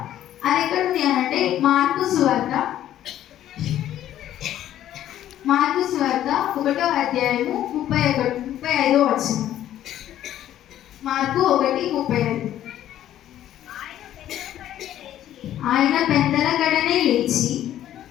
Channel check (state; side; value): quieter; right; 12.0 dB